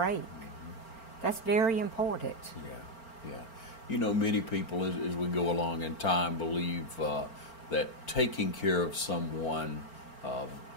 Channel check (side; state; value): right; late; 4.4 ms